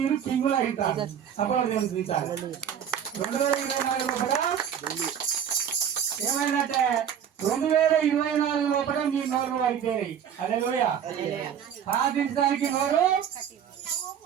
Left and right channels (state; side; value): quieter; left; 8.7 dB